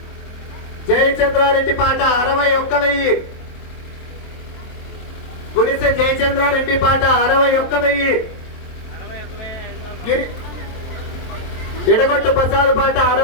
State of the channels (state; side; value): late; right; 23 ms